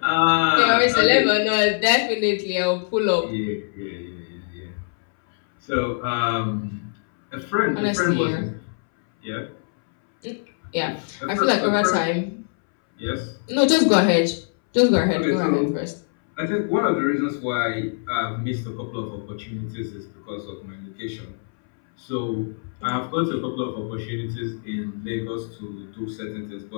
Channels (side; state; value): right; silent; 63 dB below the other